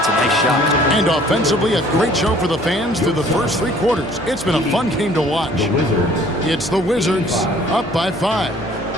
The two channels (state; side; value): normal; both; correlation 0.55